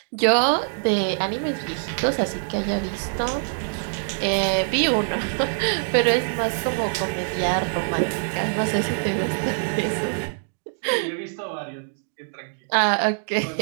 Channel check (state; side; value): silent; left; digital silence